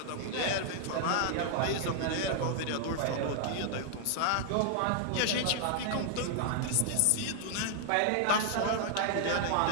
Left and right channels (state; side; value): different; both; correlation 0.00